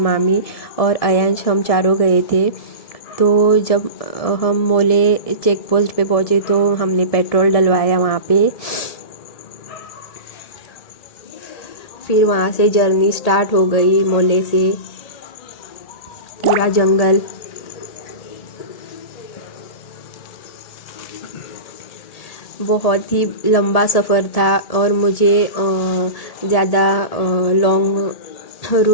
और अयांश, हम चारों गए थे। तो जब हम मोले चेक पोस्ट पे पहुँचे तो हमने पेट्रोल डलवाया वहाँ पे। फिर वहाँ से जर्नी स्टार्ट हो गई। मोले से पूरा जंगल, बहुत ही लंबा सफ़र था और मुझे ज़्यादा लॉन्ग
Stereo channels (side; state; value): right; late; 1.7 ms